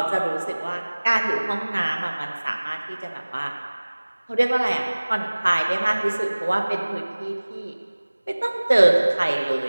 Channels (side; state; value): both; inverted; correlation -1.00